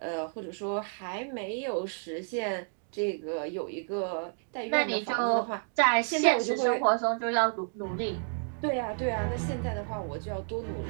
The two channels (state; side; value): silent; left; 57 dB below the other